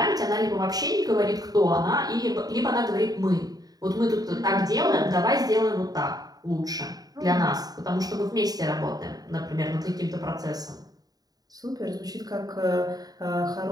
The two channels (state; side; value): late; left; 0.18 ms